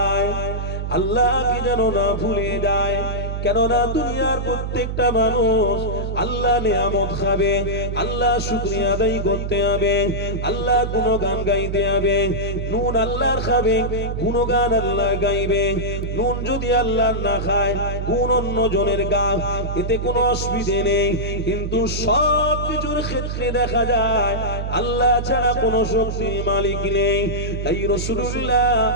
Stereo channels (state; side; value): noise; right; hum, 3 dB below the sound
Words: আল্লাহকে যেন না ভুলে যায়। কেননা দুনিয়ার প্রত্যেকটা মানুষ আল্লাহ নিয়ামত খাবে, আল্লাহ শুকরিয়া আদায় করতে হবে, আল্লাহ গুণগান গাইতে হবে। নুন আল্লাহর খাবে, গুণগান আল্লাহ গাইবে। নুন যদি আল্লাহ না খায়, গুণ অন্য জনের গা, এতে কোনো অসুবিধে নেই। কিন্তু সব কিছুর ক্ষেত্রে দেখা যায় আল্লাহ ছাড়া কোনো শক্তির মালিক নেই। তাই রাসূলুল্লাহ